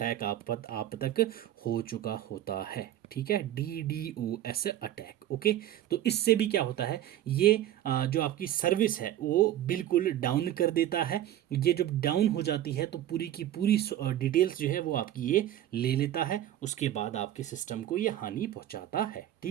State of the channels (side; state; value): left; quieter; 12.4 dB